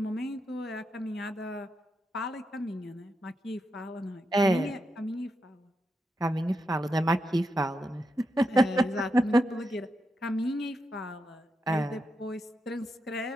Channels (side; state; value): both; normal; correlation 0.85